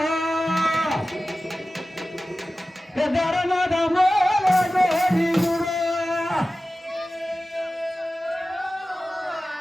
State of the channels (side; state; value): both; normal; correlation 0.95